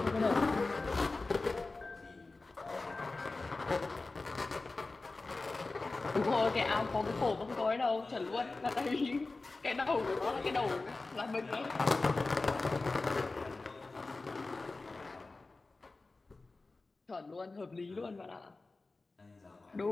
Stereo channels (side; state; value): right; quieter; 3.5 dB